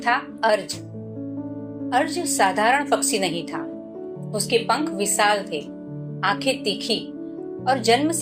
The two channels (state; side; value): identical; both; correlation 1.00